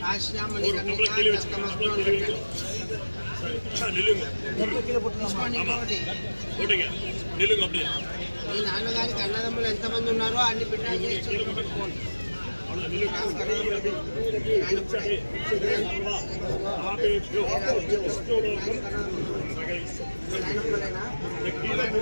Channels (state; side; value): inverted; both; correlation -1.00